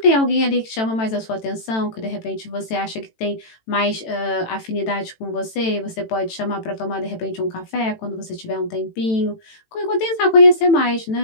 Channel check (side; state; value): right; late; 18 ms